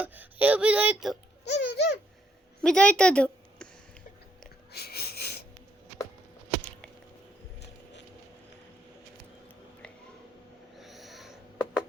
ಅಯ್ಯೋ ಬಿದ್ದೋಯ್ತು, ಬಿದ್ದೋಯ್ತದು.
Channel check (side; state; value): both; normal; correlation 0.72